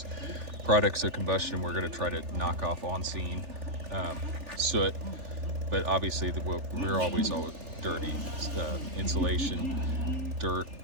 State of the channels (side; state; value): left; late; 3.4 ms